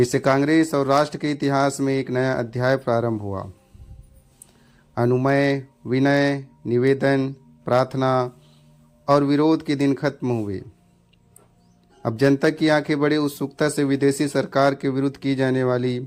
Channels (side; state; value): both; identical; correlation 1.00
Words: कांग्रेस और राष्ट्र के इतिहास में एक नया अध्याय प्रारंभ हुआ। अनुमय, विनय, निवेदन, प्रार्थना और विरोध के दिन खत्म हुए। अब जनता की आंखें बड़े उत्सुकता से विदेशी सरकार के विरुद्ध की जाने वाली